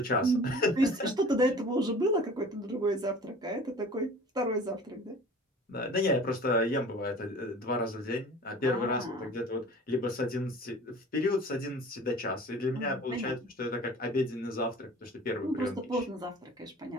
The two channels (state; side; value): normal; both; correlation 0.44